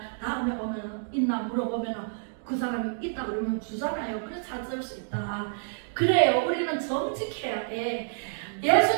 다음에 오면은 있나 물어보면은 그 사람이 있다 그러면 주잖아요. 그래서 찾을 수 있다. 그래요. 우리는 정직해야 돼.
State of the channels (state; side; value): silent; left; digital silence